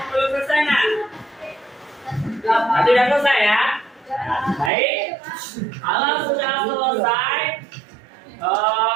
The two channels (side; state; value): left; drops out; at 4.7 s